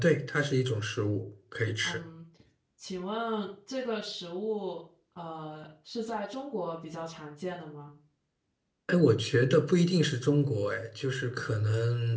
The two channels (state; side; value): identical; both; correlation 1.00